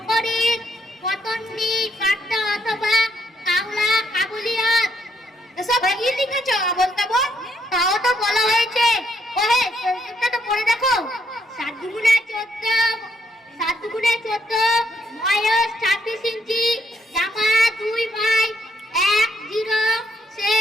পতন্নি কাট্টা অথবা কাউলা কাবুলিয়ত। এসব কি লিখেছ বলতে বল? তাও তো বলা হয়েছে। ওহে, সেটা তো পড়ে দেখো। 7 গুণে 14, 7 গুণে 14, বয়স 26 ইঞ্চি, জামা 2/10,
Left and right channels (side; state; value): both; normal; correlation 0.74